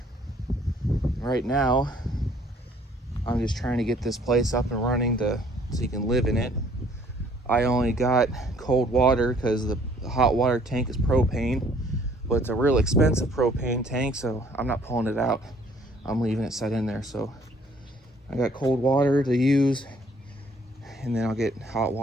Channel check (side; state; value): both; normal; correlation 0.60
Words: Right now, I'm just trying to get this place up and running so you can live in it. I only got cold water because the hot water tank is propane, but it's a real expensive propane tank, so I'm not pulling it out. I'm leaving it set in there. So I got cold water to use, and then I'll get hot